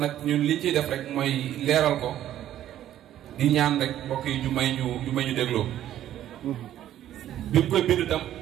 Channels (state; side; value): quieter; left; 12.0 dB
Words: ñun li ciy def rek mooy leeral ko di ñaan rek mbokk yi ñu may ñu dégloo bi mu koy bind tam